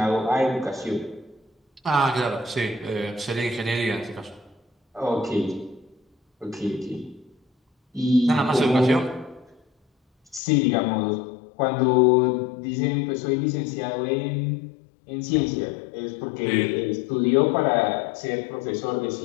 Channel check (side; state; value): right; drops out; at 10.4 s